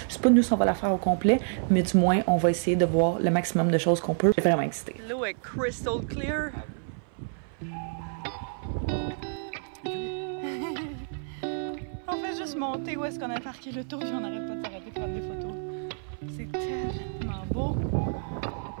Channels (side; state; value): left; silent; 57 dB below the other